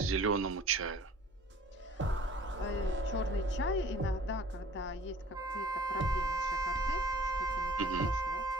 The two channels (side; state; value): both; normal; correlation 0.50